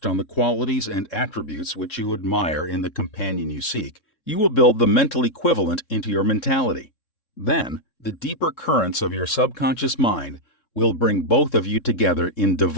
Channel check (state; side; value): late; right; 3.6 ms